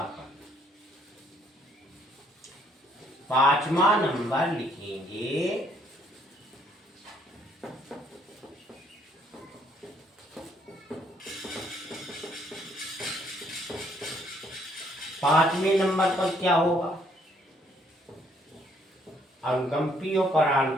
कर। 5वां नंबर लिखेंगे पांचवें नंबर पर क्या होगा? अनुकंपी और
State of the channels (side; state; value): both; normal; correlation 0.67